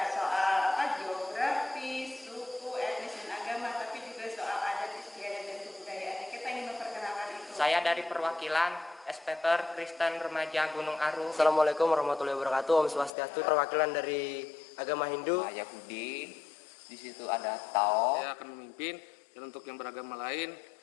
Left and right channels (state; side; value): drops out; right; at 13.1 s